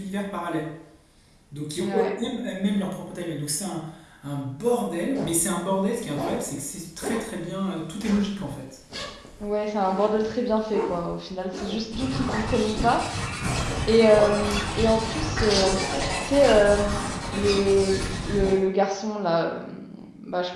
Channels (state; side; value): identical; both; correlation 1.00